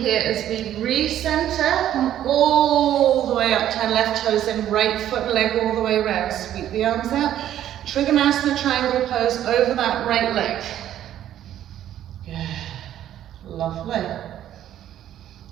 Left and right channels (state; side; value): quieter; left; 11.5 dB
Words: as we recenter, come all the way up, turn left toes in, right foot, leg all the way around. Sweep the arms out. Trikonasana triangle pose over that right leg. Good. Lovely.